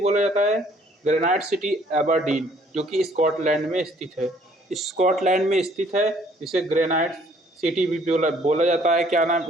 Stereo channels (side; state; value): both; normal; correlation 0.61